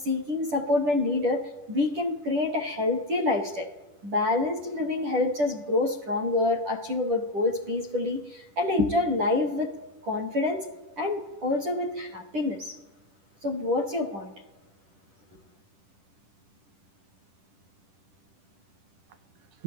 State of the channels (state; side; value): late; left; 10 ms